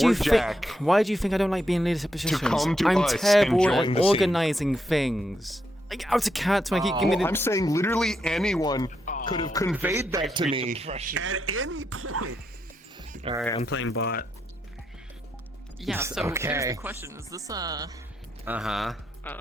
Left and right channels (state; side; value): normal; both; correlation 0.81